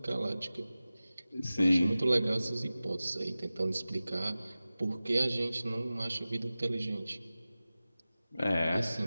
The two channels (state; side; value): inverted; both; correlation -0.96